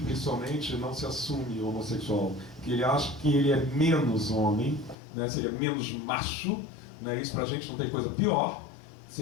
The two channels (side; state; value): right; drops out; at 5.0 s